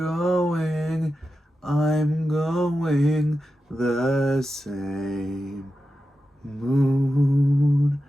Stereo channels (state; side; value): normal; both; correlation 0.91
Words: I'm going the same. Moon,